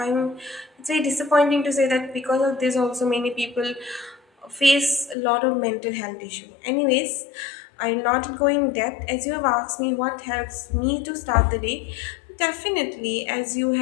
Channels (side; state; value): right; drops out; at 5.2 s